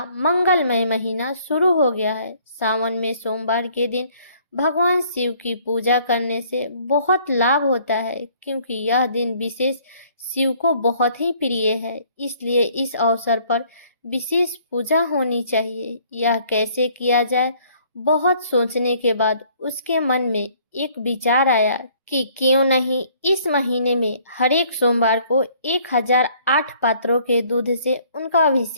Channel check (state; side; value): inverted; both; correlation -0.60